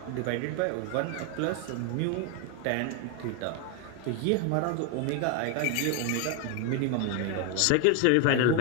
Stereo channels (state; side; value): different; both; correlation 0.01